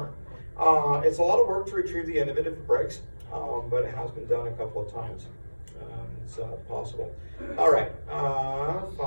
It's a lot of work to retrieve the end of it if it breaks, but it has been done a couple of times. It's possible. All right,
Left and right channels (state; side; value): inverted; both; correlation -1.00